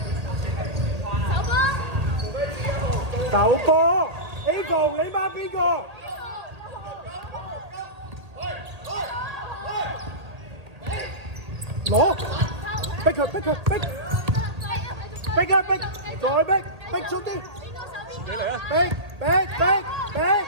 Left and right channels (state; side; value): late; left; 1.8 ms